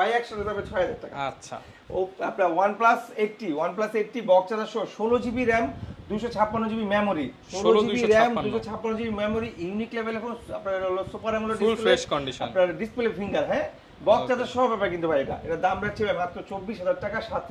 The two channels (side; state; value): both; identical; correlation 1.00